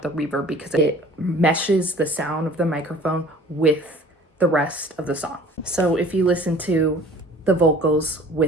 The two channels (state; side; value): normal; both; correlation 0.48